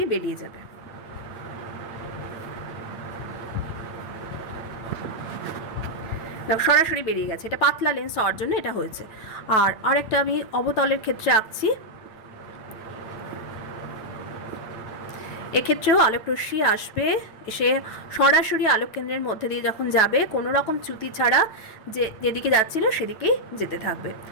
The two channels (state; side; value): late; right; 8.7 ms